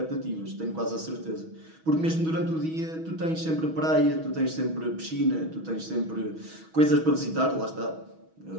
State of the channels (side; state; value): left; late; 6.2 ms